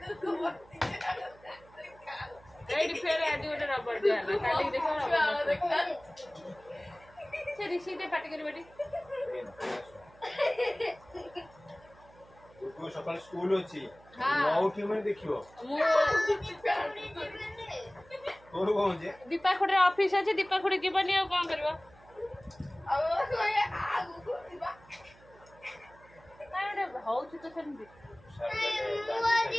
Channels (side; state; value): right; noise; hum, 25 dB below the sound